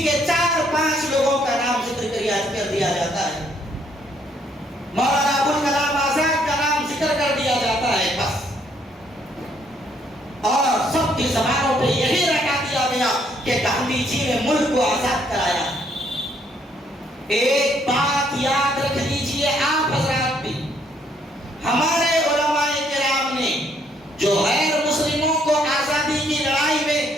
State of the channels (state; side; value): normal; both; correlation 0.68